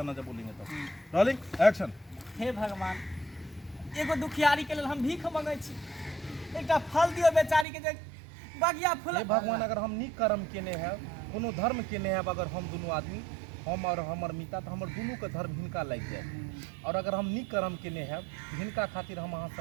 जब बोलेंगे तब रोलिंग एक्शन। हे भगवान एगो दुखियारी के लेल हम भीख मांगै छी एकटा फल दियो बेचारी के जे बगिया फूल। हे भगवान अगर हम नीक कर्म केने हैं कोनो धर्म केने हैं अगर हम दोनों आदमी हम और हमर मिता तो हमर दोनों के धर्म हिनका लग जाए और अगर हम नीक कर्म केने हैं हिनका खातिर हम अहाँ से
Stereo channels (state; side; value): drops out; left; at 7.7 s